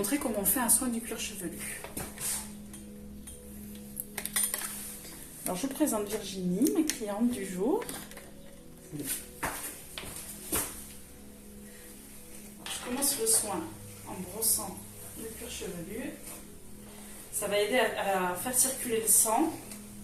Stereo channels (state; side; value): identical; both; correlation 1.00